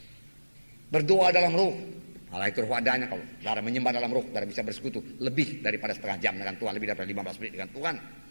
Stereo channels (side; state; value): both; inverted; correlation -1.00